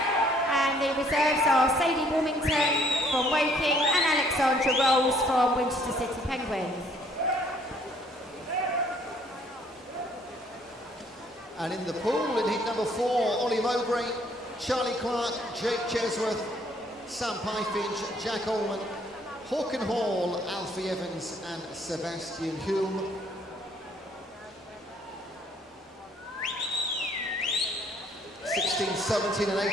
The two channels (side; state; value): both; normal; correlation 0.63